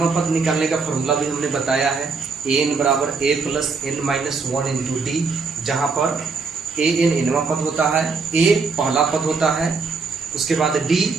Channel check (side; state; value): left; quieter; 4.6 dB